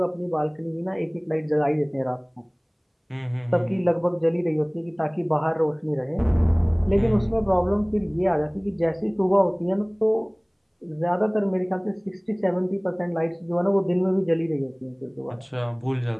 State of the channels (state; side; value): identical; both; correlation 1.00